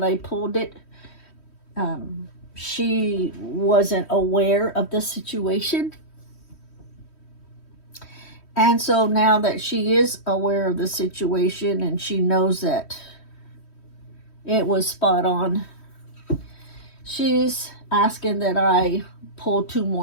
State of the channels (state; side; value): late; right; 3.1 ms